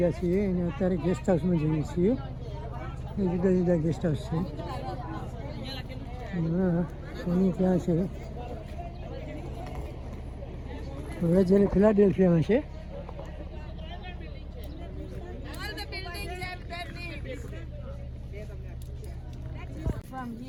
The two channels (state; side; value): identical; both; correlation 1.00